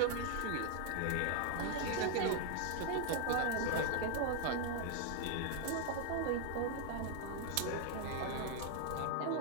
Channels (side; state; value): both; different; correlation 0.00